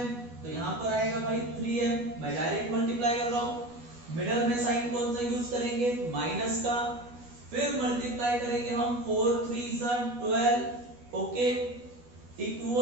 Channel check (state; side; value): late; left; 12 ms